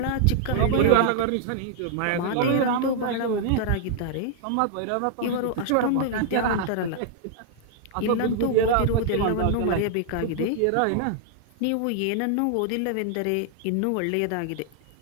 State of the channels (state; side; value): different; both; correlation -0.01